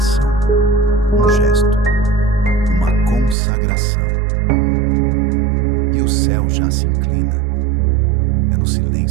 um gesto, uma consagração. E o céu já se inclina. É no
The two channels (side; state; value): left; drops out; at 3.4 s